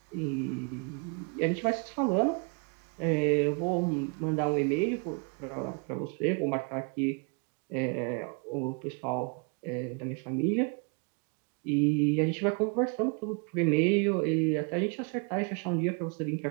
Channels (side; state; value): left; quieter; 36.4 dB